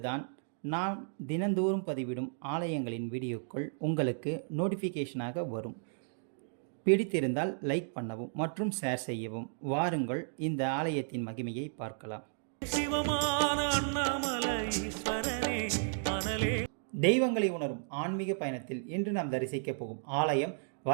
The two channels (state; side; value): silent; left; digital silence